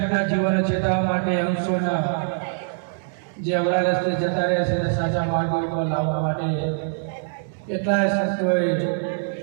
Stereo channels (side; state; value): left; silent; 63 dB below the other